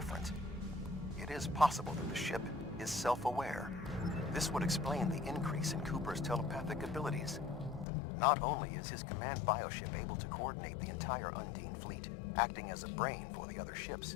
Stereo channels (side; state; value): right; drops out; at 7.9 s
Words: It is possible that the ship is self-aware. This would explain the increase in Cooper's telepathic abilities. Not only is his command bioship able to coordinate the entire Undine fleet, acting as a brain for the other ships,